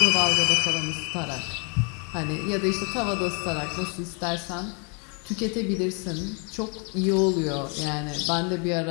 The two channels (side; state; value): right; quieter; 36.8 dB